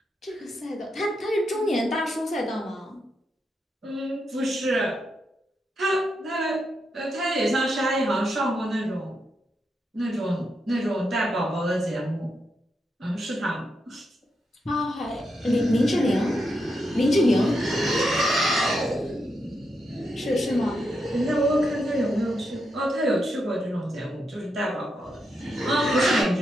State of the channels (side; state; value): both; normal; correlation 0.83